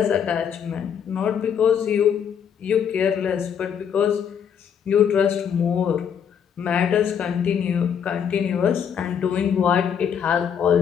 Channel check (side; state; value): right; quieter; 7.9 dB